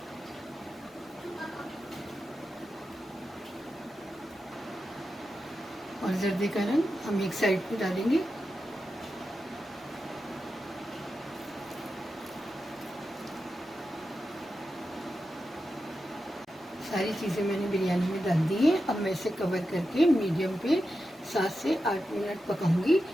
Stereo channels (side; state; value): both; normal; correlation 0.90